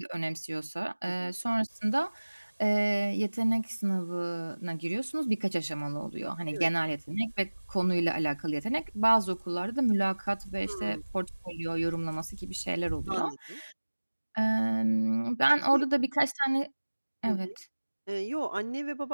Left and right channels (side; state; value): both; inverted; correlation -1.00